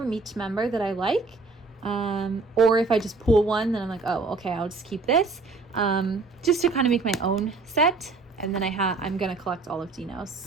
each member that I like. Or if I just pull one, then I'm like, oh, okay, I'll just keep this. Just to kind of make my own set. And then I'm going to collect all of Dino's.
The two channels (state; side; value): quieter; left; 3.9 dB